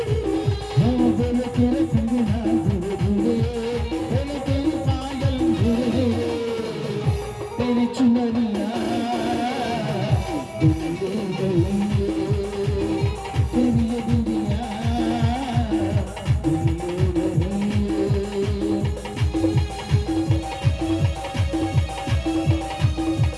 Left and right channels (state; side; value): identical; both; correlation 1.00